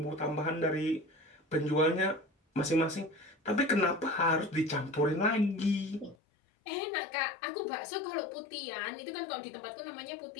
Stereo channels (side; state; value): right; drops out; at 6.2 s